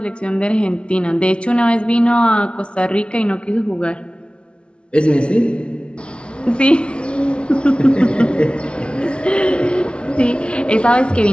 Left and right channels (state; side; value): late; right; 0.058 ms